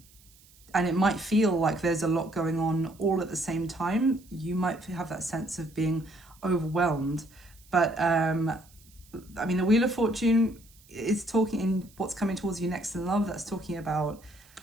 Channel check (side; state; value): right; noise; hiss, 27 dB below the sound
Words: it might feel like there's a lot going on all at the same time. You might have that sense of being overwhelmed, but I mean, the Wheel of Fortune is talking in what's coming towards you next in love. That's talking about